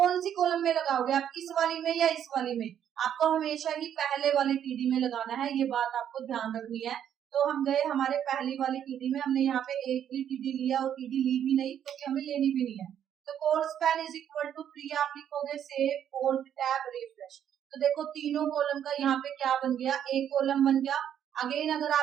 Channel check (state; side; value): quieter; left; 9.6 dB